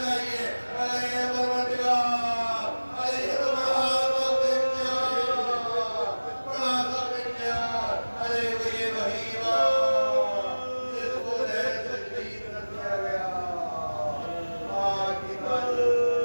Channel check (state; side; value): inverted; both; correlation -1.00